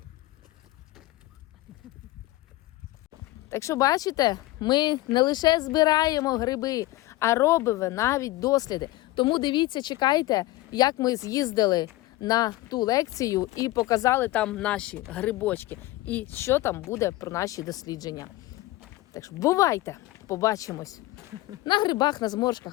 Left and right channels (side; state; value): right; quieter; 18.1 dB